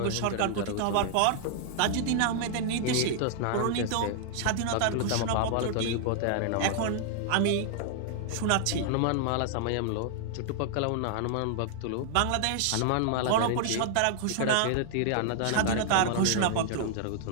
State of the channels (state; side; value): different; both; correlation -0.01